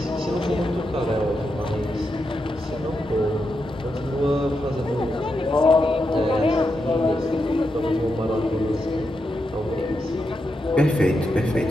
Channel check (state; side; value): normal; both; correlation 0.85